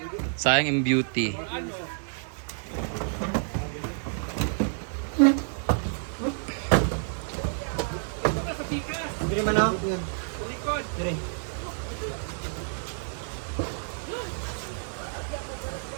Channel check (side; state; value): left; silent; digital silence